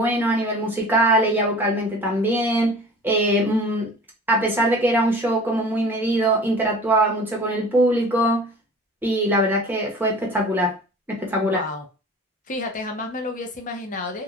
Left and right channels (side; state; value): both; normal; correlation 0.42